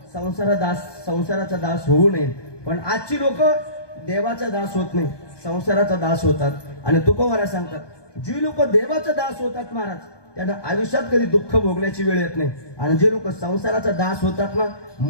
संसाराचा दास होऊ नये. पण आजची लोक देवाचा दास होत नाही, संसाराचा दास होतात. आणि तुकोबारा सांगतात, जी लोक देवाचा दास होतात महाराज, त्यांना आयुष्यात कधी दुःख भोगण्याची वेळ येत नाही. आणि जे लोक संसाराचा दास होतात ना,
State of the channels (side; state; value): right; late; 1.2 ms